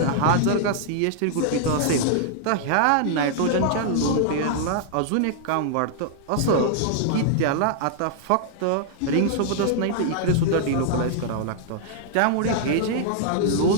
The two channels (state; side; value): different; both; correlation -0.01